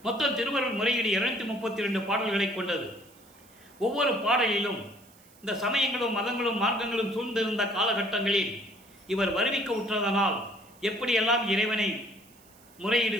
மொத்தம் திருவருள் முறையீடு 232 பாடல்களை கொண்டது. ஒவ்வொரு பாடலிலும் இந்த சமயங்களும் மதங்களும் மார்க்கங்களும் சூழ்ந்திருந்த காலகட்டங்களில் இவர் வருவிக்க உற்றதனால் எப்படியெல்லாம் இறைவனை முறையீடு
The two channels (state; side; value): noise; right; hiss, 27 dB below the sound